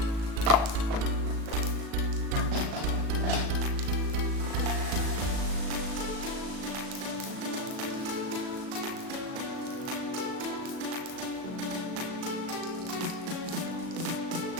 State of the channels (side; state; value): left; late; 37 ms